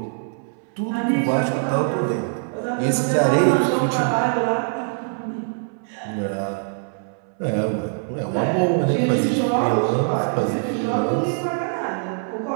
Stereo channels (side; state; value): left; silent; 64 dB below the other